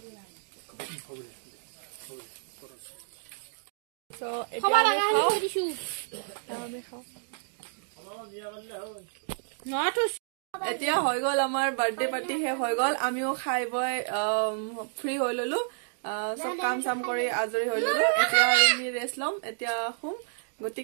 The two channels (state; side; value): silent; left; digital silence